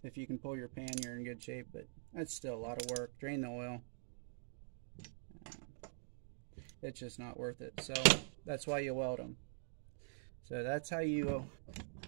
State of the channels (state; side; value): silent; left; digital silence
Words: if you can pull your pan, you're in good shape, but that's still a lot of work. Drain the oil. It's just not worth it. So that's why you weld them. So that's how you